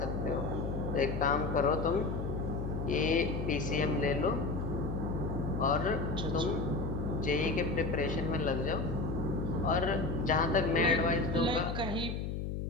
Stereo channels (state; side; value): noise; left; hum, 3 dB below the sound